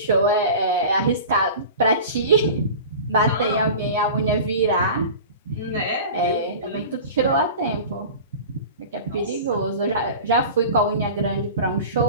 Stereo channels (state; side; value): inverted; both; correlation -0.36